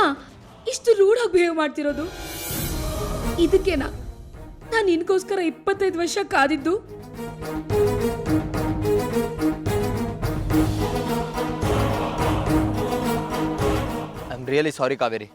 ಇಷ್ಟು ರೂಢಾಗಿ ಬಿಹೇವ್ ಮಾಡ್ತಿರೋದು? ಇದಕ್ಕೇನಾ ನಾನು ನಿನ್ಗೋಸ್ಕರ 25 ವರ್ಷ ಕಾದಿದ್ದು? I am really sorry Kaveri.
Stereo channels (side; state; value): both; identical; correlation 1.00